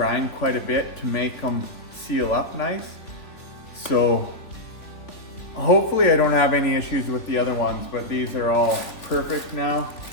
quite a bit to make them seal up nice. So hopefully I don't have any issues with the other ones, but these are all perfect now.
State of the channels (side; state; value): right; late; 3.5 ms